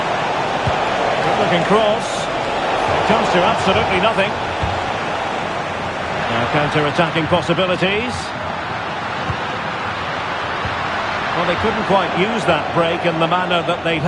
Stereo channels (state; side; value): identical; both; correlation 1.00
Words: Good looking cross. Comes to absolutely nothing. Now counter-attacking possibilities. Well, they couldn't quite use that break in the manner that they'd